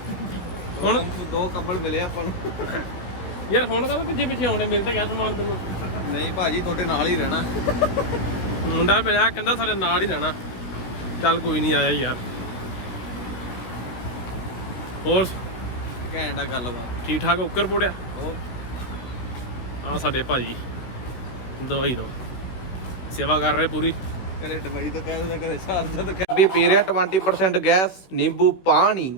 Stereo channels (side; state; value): right; late; 16 ms